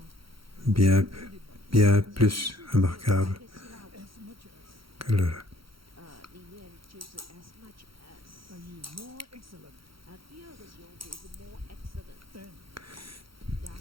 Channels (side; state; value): left; late; 0.74 ms